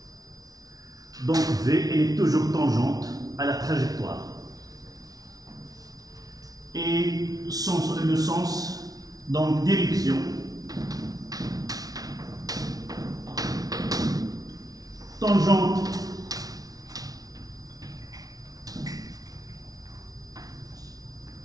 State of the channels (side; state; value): left; late; 0.18 ms